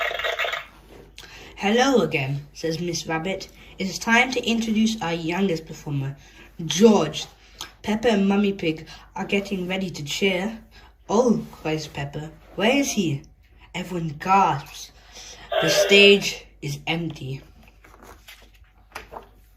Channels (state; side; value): identical; both; correlation 1.00